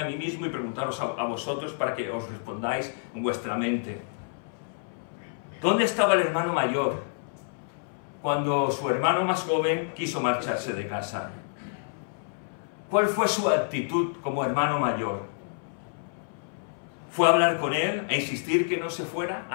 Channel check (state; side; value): silent; right; 59 dB below the other